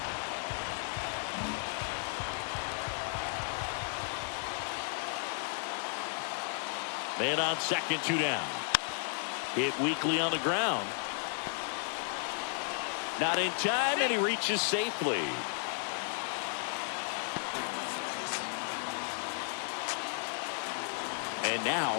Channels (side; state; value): right; silent; 55 dB below the other